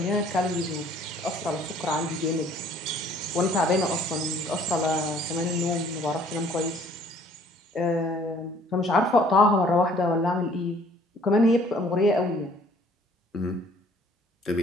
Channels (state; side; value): normal; both; correlation 0.57